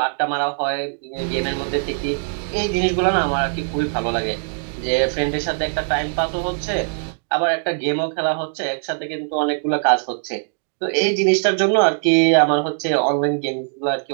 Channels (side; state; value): left; silent; digital silence